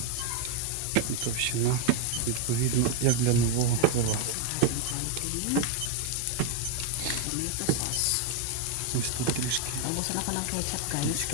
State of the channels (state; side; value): different; both; correlation 0.01